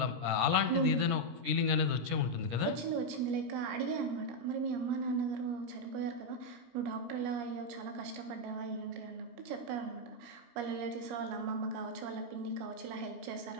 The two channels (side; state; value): left; late; 17 ms